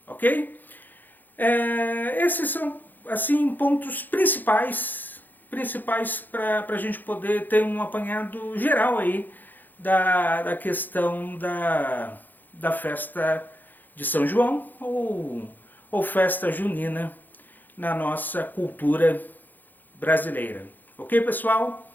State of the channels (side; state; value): right; late; 0.086 ms